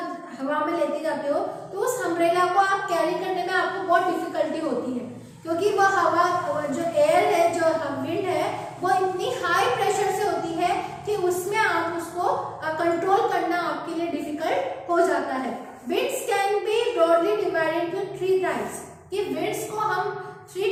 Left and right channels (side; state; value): both; identical; correlation 1.00